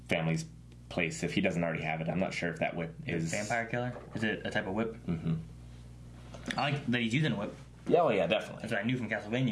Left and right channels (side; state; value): both; identical; correlation 1.00